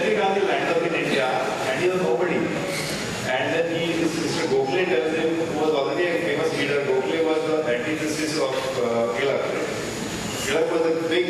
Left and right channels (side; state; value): both; identical; correlation 1.00